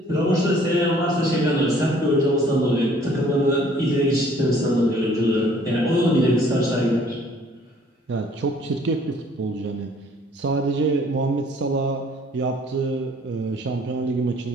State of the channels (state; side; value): normal; both; correlation 0.58